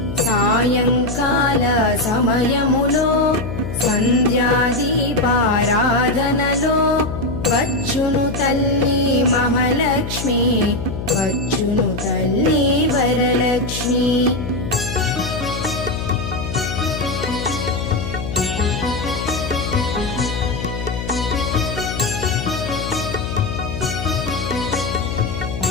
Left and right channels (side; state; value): left; noise; hum, 6 dB below the sound